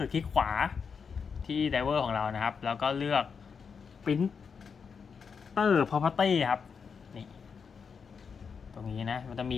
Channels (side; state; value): right; quieter; 6.0 dB